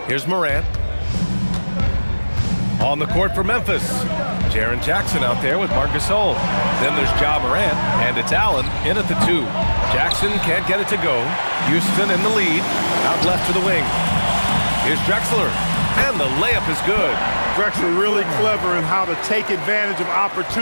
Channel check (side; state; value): both; inverted; correlation -1.00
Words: Here's Morant. On the court for Memphis. Jaren Jackson out there with Gasol. Then there's Morant, and it's Allen in at the 2. Jackson can't get it to go. Houston in the lead. Out left to the wing. Here's Drexler, and the layup is good. Drexler really clever in how to take advantage of